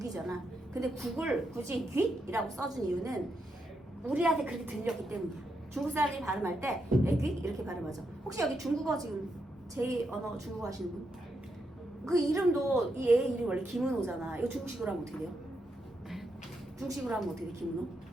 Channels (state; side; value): normal; both; correlation 0.82